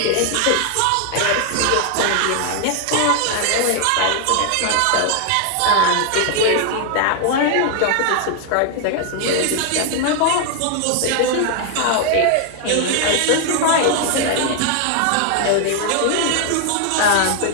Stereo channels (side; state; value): both; different; correlation 0.00